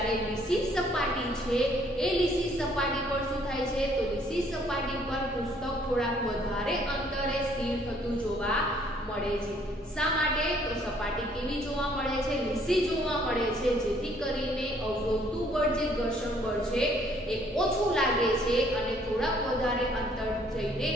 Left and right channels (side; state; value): both; normal; correlation 0.63